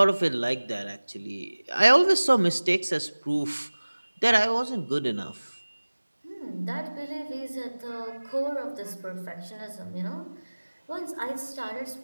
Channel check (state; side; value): inverted; both; correlation -1.00